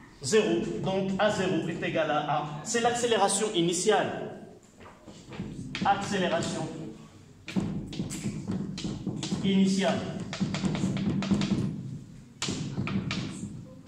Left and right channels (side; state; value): both; identical; correlation 1.00